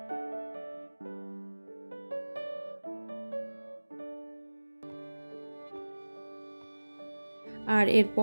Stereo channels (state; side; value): inverted; both; correlation -1.00